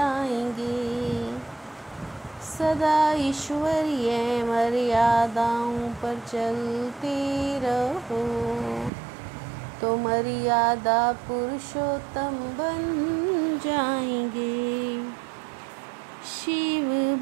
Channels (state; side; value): drops out; left; at 8.9 s